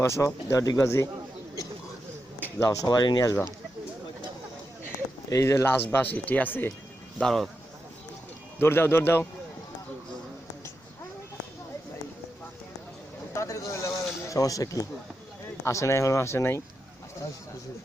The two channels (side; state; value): both; normal; correlation 0.87